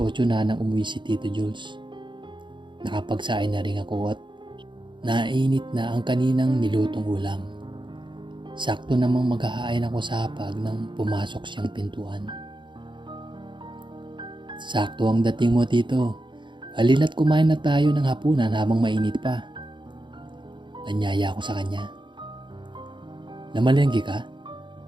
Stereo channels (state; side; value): late; left; 0.23 ms